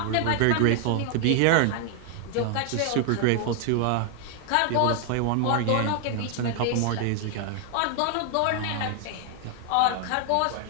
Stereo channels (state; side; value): different; both; correlation 0.00